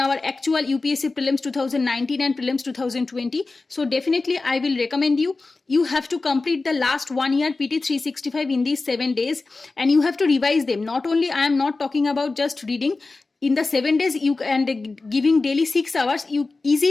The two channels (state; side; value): quieter; right; 3.6 dB